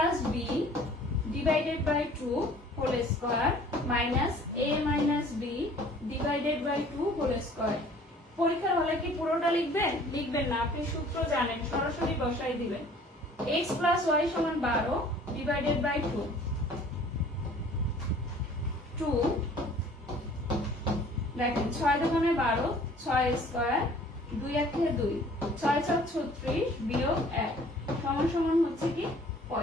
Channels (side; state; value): both; normal; correlation 0.52